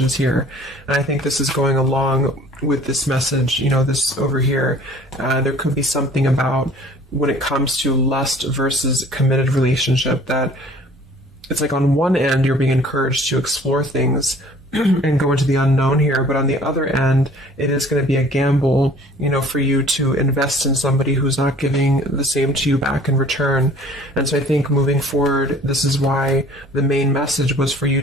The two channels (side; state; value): both; normal; correlation 0.52